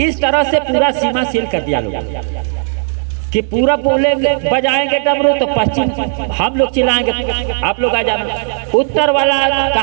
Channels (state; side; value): silent; left; 68 dB below the other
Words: तरह से पूरा सीमा सील कर दिया लोग कि पूरा बोलेंगे बजाएंगे डमरू तो पश्चिम हम लोग चिल्लाएंगे आप लोग आ जाना, उत्तर वाला